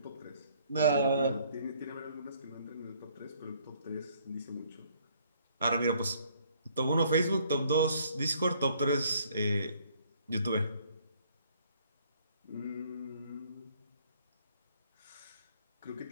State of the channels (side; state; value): both; inverted; correlation -0.63